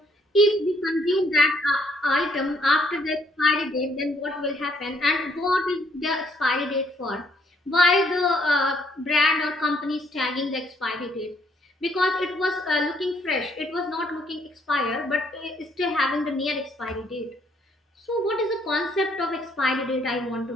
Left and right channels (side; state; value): both; normal; correlation 0.68